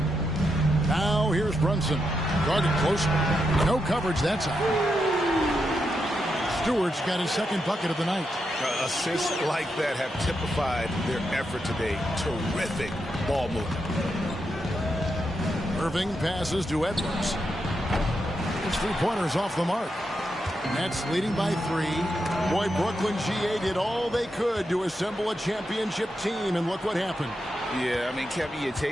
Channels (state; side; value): normal; both; correlation 0.84